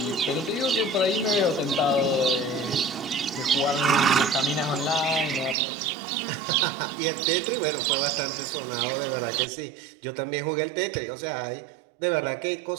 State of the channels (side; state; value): left; drops out; at 5.6 s